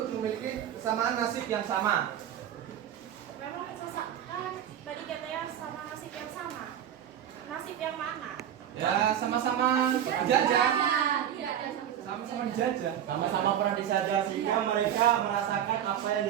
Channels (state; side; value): quieter; left; 10.1 dB